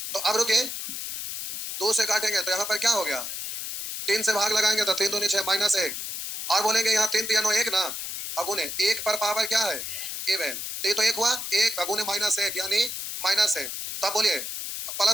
तो अब रुके, 2 से काटेंगे तो यहाँ पर क्या हो गया? 3 से भाग लगाएंगे तो 3 दूनी 6 -1, और बोलेंगे यहाँ 3 3 1 ना, अगुने 1 पर पावर क्या है? इवन। ये तो 1 हुआ, 1 अगुने -1 यानी -1। तब बोलिए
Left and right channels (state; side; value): noise; left; hiss, 5 dB below the sound